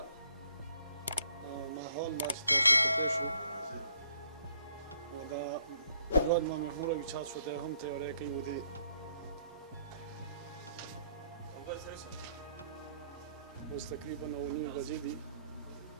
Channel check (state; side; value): inverted; both; correlation -0.68